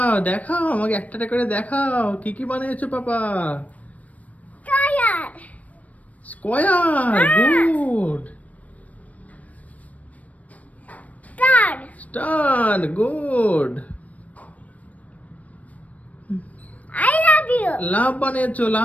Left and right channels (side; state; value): right; late; 0.069 ms